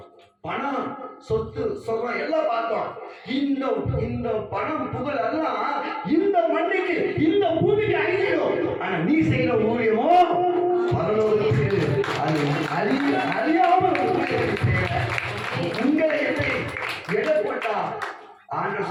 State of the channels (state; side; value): identical; both; correlation 1.00